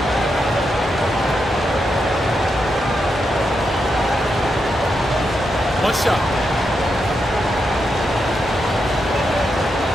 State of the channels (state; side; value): normal; both; correlation 0.84